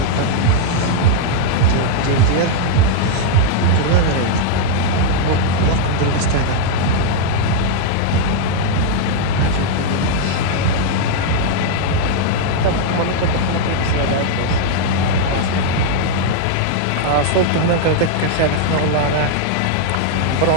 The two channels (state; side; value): different; both; correlation 0.00